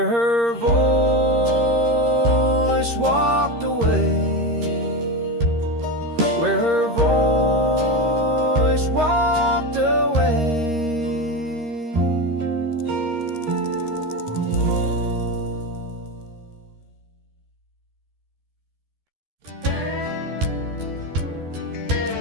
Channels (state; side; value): late; left; 13 ms